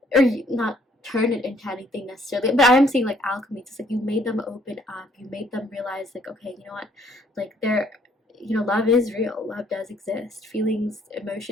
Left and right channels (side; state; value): both; normal; correlation 0.64